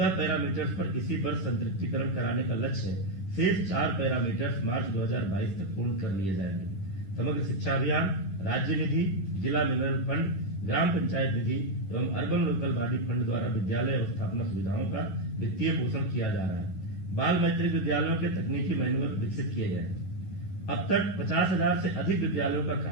पैरामीटर्स पर इसी वर्ष संतृप्तिकरण कराने का लक्ष्य है। शेष 4 पैरामीटर्स मार्च 2022 तक पूर्ण कर लिए जाएंगे। समग्र शिक्षा अभियान, राज्य निधि, जिला मिनरल फंड, ग्राम पंचायत निधि एवं अर्बन लोकल बॉडी फंड द्वारा विद्यालय अवस्थापना सुविधाओं का वित्तीय पोषण किया जा रहा है। बाल मैत्रिक विद्यालयों के तकनीकी मैनुअल विकसित किए गए हैं। अब तक 50,000 से अधिक विद्यालयों का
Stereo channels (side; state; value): right; late; 10 ms